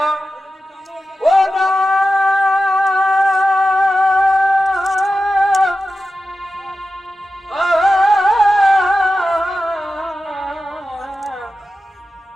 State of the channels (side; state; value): both; normal; correlation 0.93